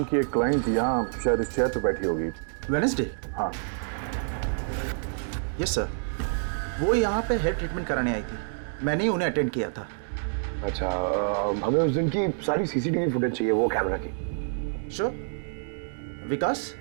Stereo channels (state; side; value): silent; left; digital silence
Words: की एक क्लाइंट यहाँ शायद इस चेयर पे बैठी होगी। वेडनेसडे? हाँ। यस सर, वो यहाँ पे हेयर ट्रीटमेंट कराने आई थी, मैंने ही उन्हें अटेंड किया था। अच्छा, हमें उस दिन की सारी सीसीटीवी फुटेज चाहिए, वो कैमरा की। श्योर। विकास,